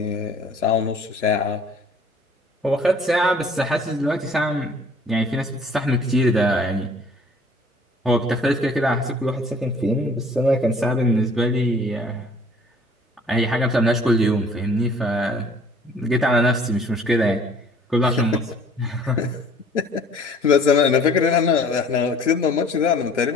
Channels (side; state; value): both; normal; correlation 0.53